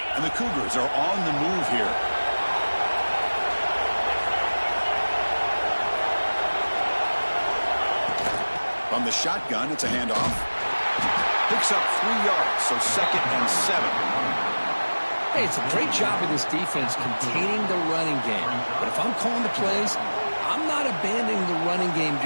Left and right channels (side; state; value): both; inverted; correlation -1.00